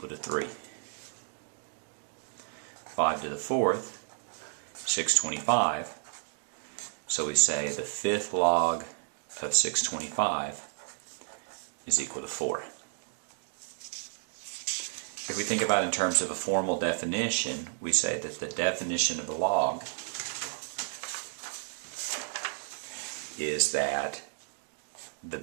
to 3. 5 to the 4th, 625. So we say the 5th log of 625 is equal to 4. If we think about it in terms of a formal definition, we say that the definition of a log is that the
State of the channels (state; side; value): silent; left; digital silence